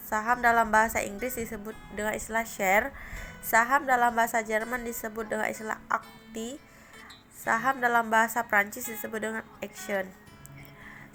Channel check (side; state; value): both; identical; correlation 1.00